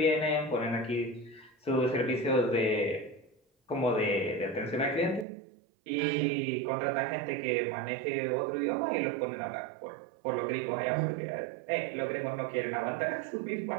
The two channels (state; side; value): drops out; left; at 5.2 s